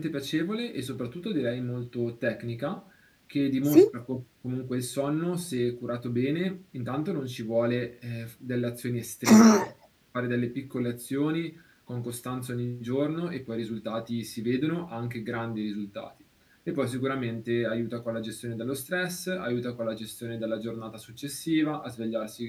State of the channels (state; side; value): identical; both; correlation 1.00